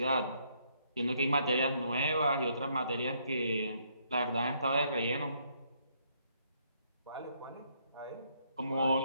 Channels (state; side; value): inverted; both; correlation -0.71